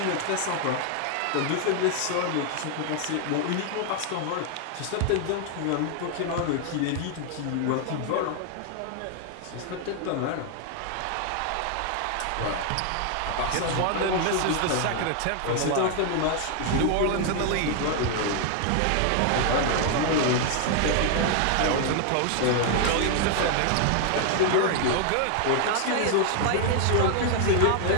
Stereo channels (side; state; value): both; different; correlation 0.00